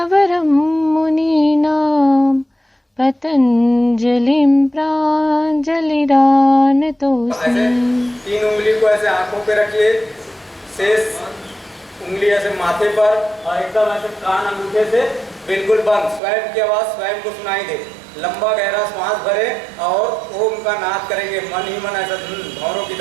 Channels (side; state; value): left; drops out; at 16.2 s